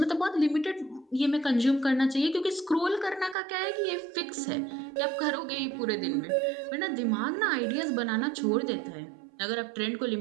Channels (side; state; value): left; drops out; at 3.4 s